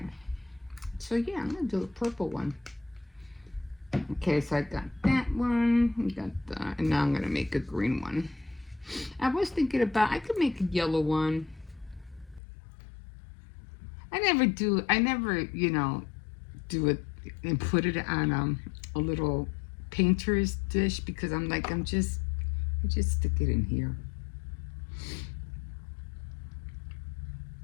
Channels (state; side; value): drops out; right; at 12.4 s